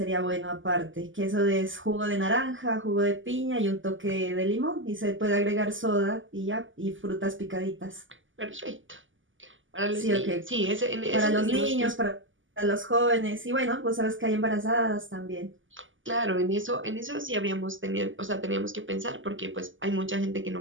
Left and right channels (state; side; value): late; left; 0.57 ms